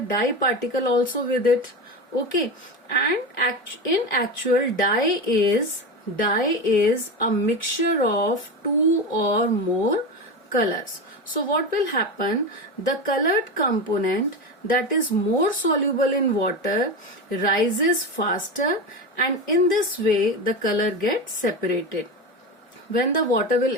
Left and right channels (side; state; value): both; normal; correlation 0.21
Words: particle also with it. Okay, and in actual dye is a mixture of two or more colors. So what will happen? The colored component that is more soluble in water rises faster, and in this way the color gets separated. When the water will